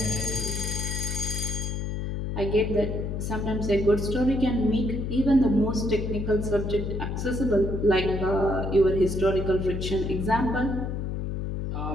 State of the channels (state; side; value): noise; left; hum, 3 dB below the sound